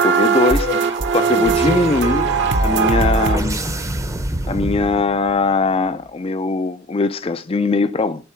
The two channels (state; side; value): normal; both; correlation 0.40